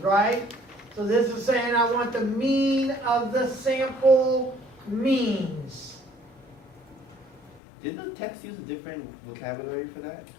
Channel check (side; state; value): right; drops out; at 7.6 s